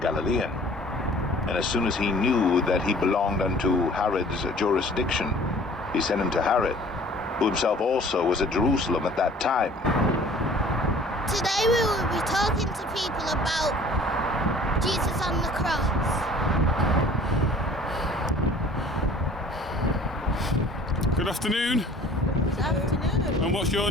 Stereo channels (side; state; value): both; normal; correlation 0.50